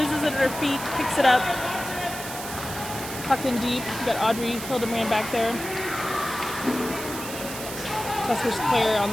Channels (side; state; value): right; noise; hiss, 9 dB below the sound